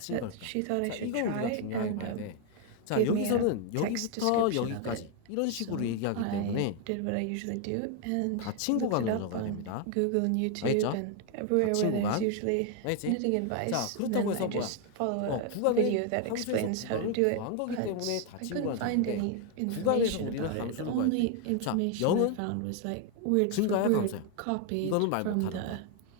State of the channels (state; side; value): different; both; correlation 0.01